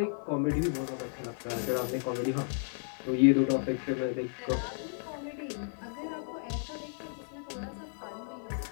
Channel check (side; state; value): right; silent; digital silence